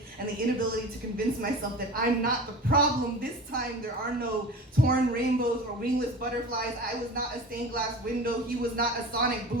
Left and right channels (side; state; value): both; normal; correlation 0.35